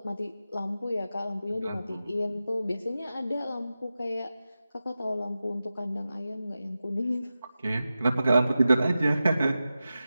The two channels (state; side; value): inverted; both; correlation -0.93